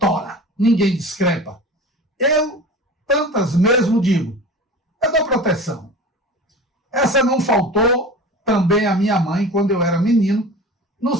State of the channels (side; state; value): both; normal; correlation 0.36